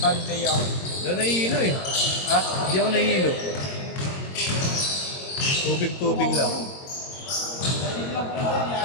Sunday ako. Doon nahihilo eh. Ha? Hindi ako nahihilo. Tubig-tubig lang.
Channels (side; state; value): right; late; 22 ms